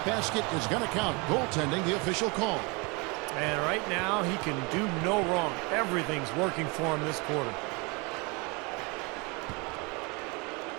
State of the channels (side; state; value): left; quieter; 28.9 dB